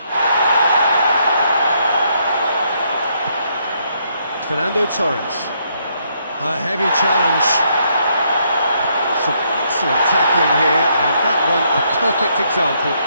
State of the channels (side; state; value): both; inverted; correlation -0.73